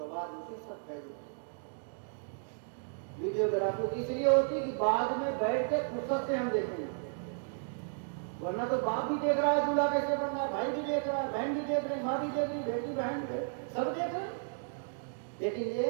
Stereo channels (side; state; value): left; silent; digital silence